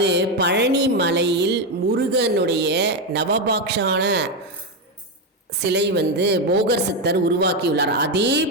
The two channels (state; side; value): normal; both; correlation 0.08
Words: பழனி மலையில் முருகனுடைய நவபாக்ஷான சிலை போகர் சித்தர் உருவாக்கியுள்ளார். அதே